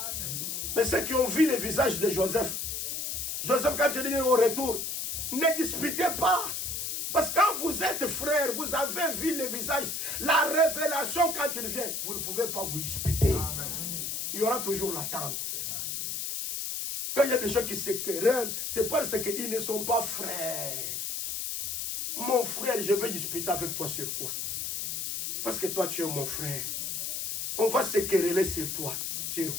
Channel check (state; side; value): noise; left; hiss, 3 dB below the sound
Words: Mais ceux qui ont vu le visage de Joseph, Joseph, quand il dit au retour, ne disputez pas. Parce que quand vous êtes frères, vous avez vu le visage, la révélation quand il vient, vous ne pouvez pas vous disputer. Il y aura toujours l'attente. Quand il y a des gens qui se querellent, c'est parce qu'ils ne sont pas frères. Mon frère, je vais disputer avec toi sur quoi? Parce que toi, tu es mon frère. On va se quereller sur toi. Sur